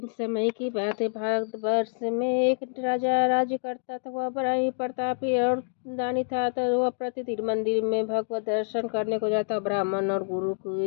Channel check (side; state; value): right; silent; digital silence